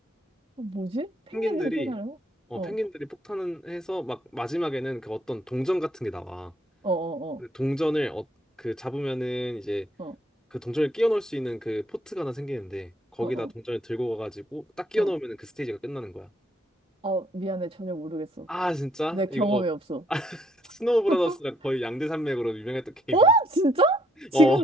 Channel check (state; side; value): normal; both; correlation 0.70